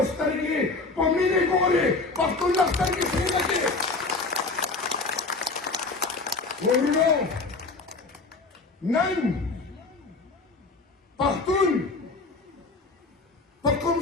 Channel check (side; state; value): right; quieter; 3.7 dB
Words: سترګې په مینې ګوري پښتون له سترګې سینه کې ورونو نن پښتون په کوم